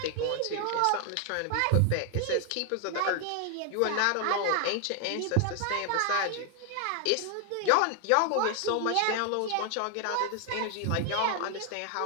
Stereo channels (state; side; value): different; both; correlation 0.00